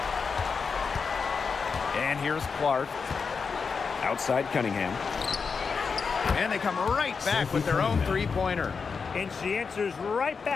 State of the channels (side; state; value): right; quieter; 5.4 dB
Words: And here's Clark. Outside Cunningham. And they come right back with their own 3-pointer. And she answers right